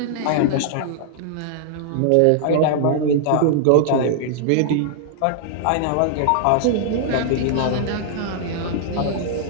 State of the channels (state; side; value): different; both; correlation -0.01